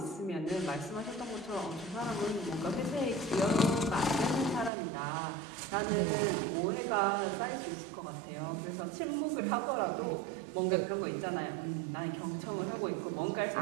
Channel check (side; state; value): left; drops out; at 4.7 s